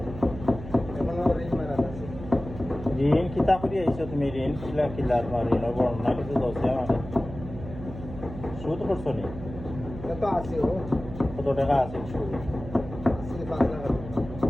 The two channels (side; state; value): right; noise; hum, 11 dB below the sound